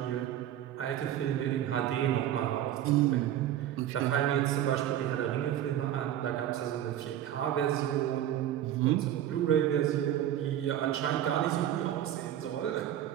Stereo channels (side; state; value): left; quieter; 11.5 dB